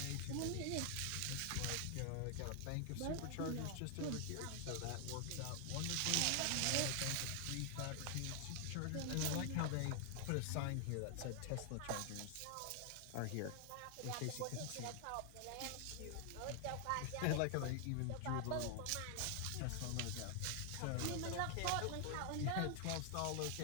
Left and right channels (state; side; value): different; both; correlation 0.00